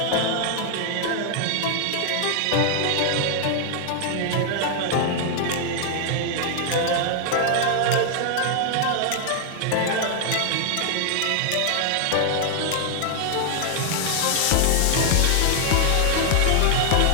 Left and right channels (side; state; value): both; different; correlation 0.00